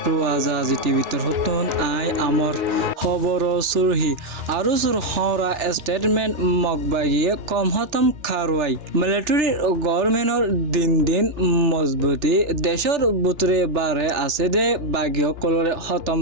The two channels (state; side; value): late; left; 3.4 ms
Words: রোজ আজি টিভিতর হতুন আই আমর খবর সুরহি আরো সুর হরা স্টেটমেন্ট মগবাগিয়ে কম হতম খারওয়াই মিলিটারি গভর্নমেন্টর দিন দিন মজবুতি দেশর বুতরে বারে আছে দে বাগিয় কলরে হতম